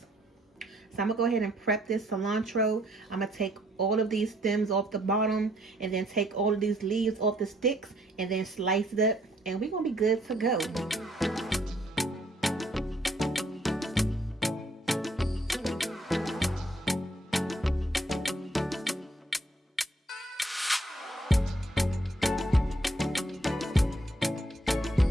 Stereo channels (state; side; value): normal; both; correlation 0.67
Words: So I'm gonna go ahead and prep this cilantro. I'm gonna take all of these stems off the bottom, and then take all of these leaves off the sticks, and then slice it up, and we're gonna be good to go.